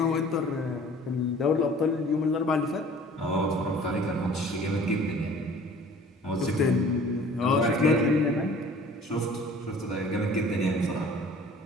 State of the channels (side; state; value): both; normal; correlation 0.49